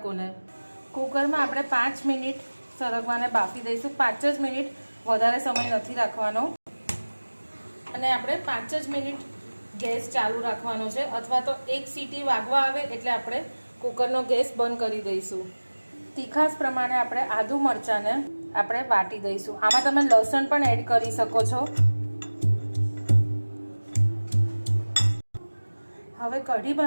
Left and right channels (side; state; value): both; inverted; correlation -1.00